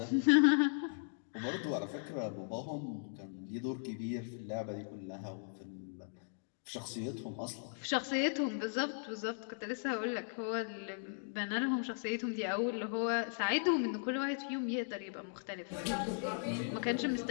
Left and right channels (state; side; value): silent; right; digital silence